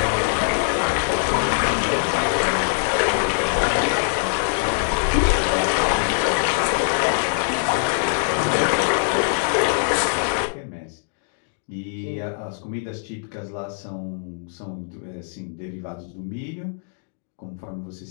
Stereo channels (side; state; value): right; silent; digital silence